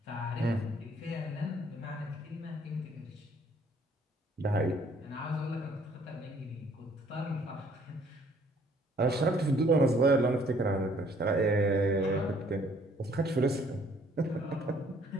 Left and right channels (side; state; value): both; normal; correlation 0.61